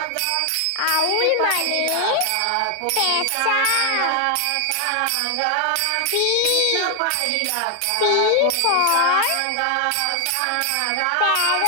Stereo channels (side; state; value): both; different; correlation 0.00